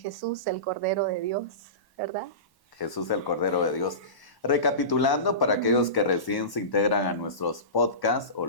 el Cordero de Dios, ¿verdad? Jesús, el Cordero de Dios. Recapitulando, para aquellos que recién se integran a nuestros podcasts o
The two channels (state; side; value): late; right; 1.1 ms